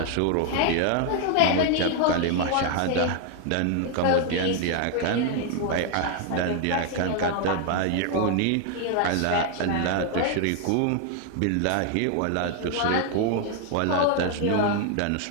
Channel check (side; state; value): both; different; correlation 0.00